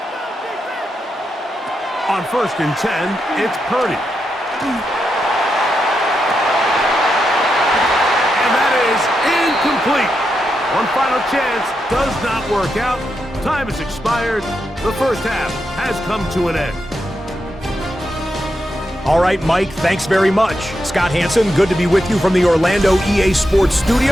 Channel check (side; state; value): both; normal; correlation 0.85